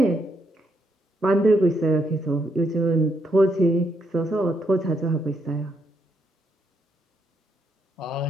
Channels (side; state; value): both; normal; correlation 0.77